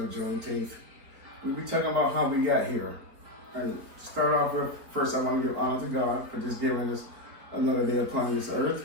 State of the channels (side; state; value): left; late; 4.4 ms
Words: Juneteenth. We'll be talking about how we got here. And to start off with, first I want to give honor to God for just giving us another day upon this earth.